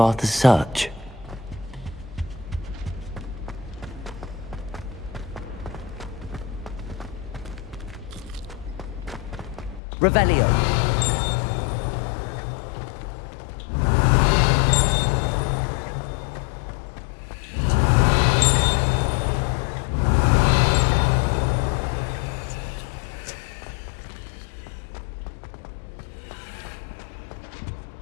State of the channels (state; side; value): drops out; right; at 9.8 s